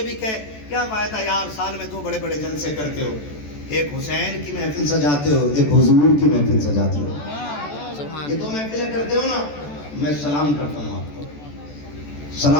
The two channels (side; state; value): right; late; 14 ms